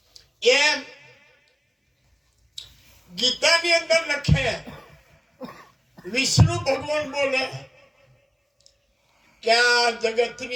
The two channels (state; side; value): identical; both; correlation 1.00